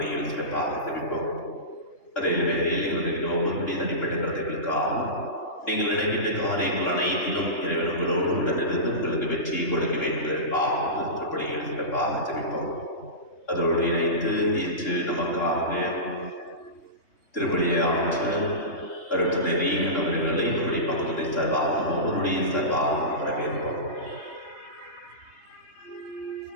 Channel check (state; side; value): late; right; 3.6 ms